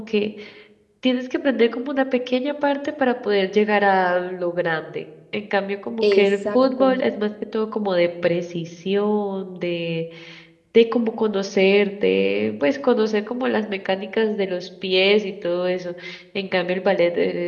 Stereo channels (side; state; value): both; identical; correlation 1.00